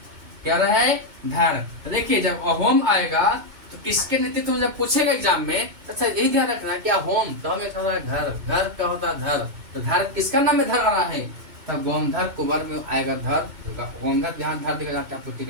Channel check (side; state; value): left; late; 2.2 ms